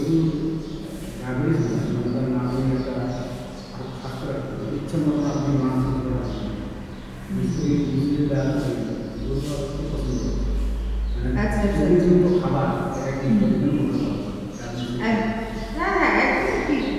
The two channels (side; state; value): both; identical; correlation 1.00